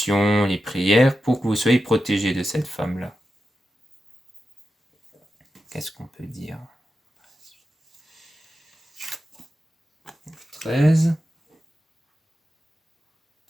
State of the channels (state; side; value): normal; both; correlation 0.91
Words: les prières, pour que vous soyez protégé de cette femme-là. Qu'est-ce qu'on peut dire? 13.